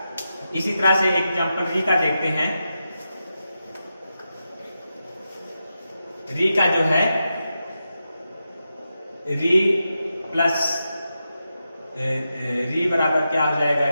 इसी तरह से एग्जांपल री का देखते हैं। री का जो है री प्लस री बराबर क्या हो जाएगा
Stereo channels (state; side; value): inverted; both; correlation -0.89